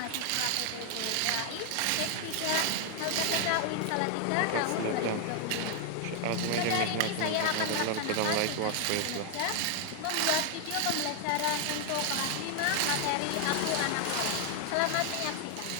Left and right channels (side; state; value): both; different; correlation 0.00